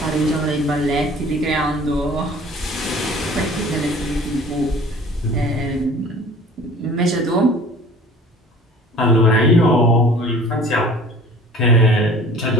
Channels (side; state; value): both; normal; correlation 0.47